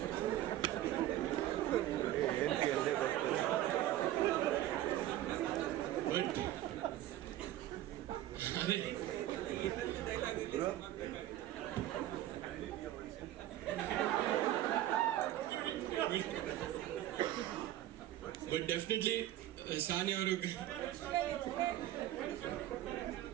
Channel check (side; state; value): left; quieter; 13.7 dB